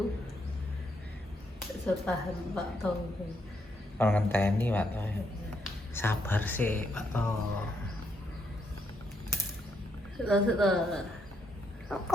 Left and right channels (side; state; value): both; normal; correlation 0.77